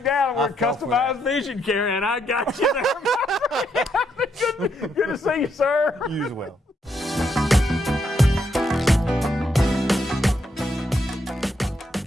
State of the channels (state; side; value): normal; both; correlation 0.76